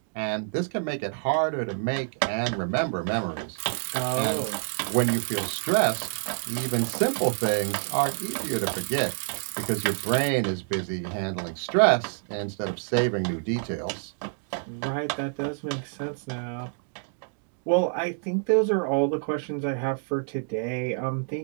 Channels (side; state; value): left; silent; digital silence